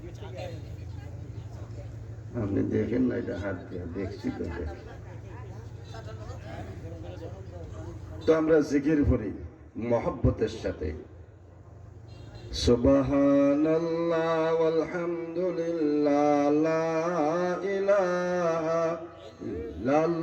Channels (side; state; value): both; identical; correlation 1.00